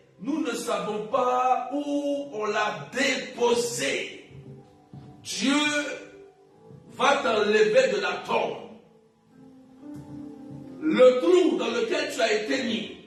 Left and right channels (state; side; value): identical; both; correlation 1.00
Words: nous ne savons pas où on l'a déposé. Dieu va t'enlever de la tombe. Le trou dans lequel tu as été